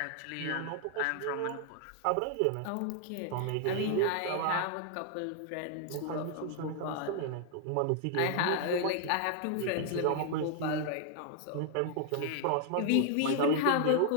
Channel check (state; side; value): different; both; correlation 0.00